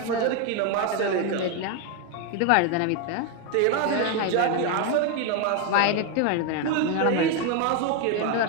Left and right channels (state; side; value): different; both; correlation 0.01